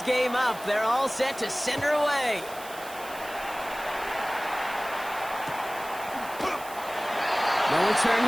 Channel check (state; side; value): noise; right; hiss, 16 dB below the sound